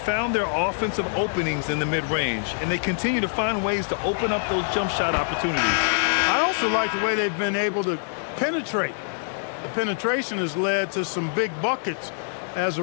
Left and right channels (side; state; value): right; silent; digital silence